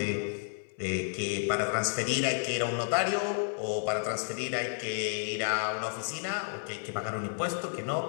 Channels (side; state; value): right; silent; 57 dB below the other